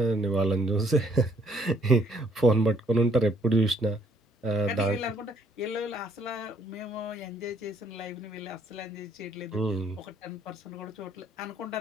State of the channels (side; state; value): both; normal; correlation 0.66